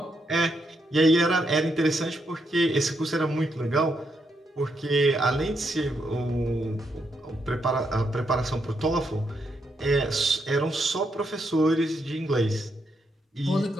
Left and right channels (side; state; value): both; normal; correlation 0.80